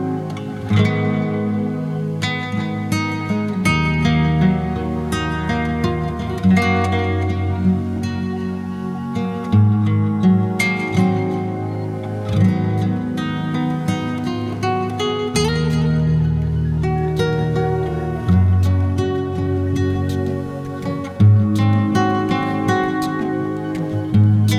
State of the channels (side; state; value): both; identical; correlation 1.00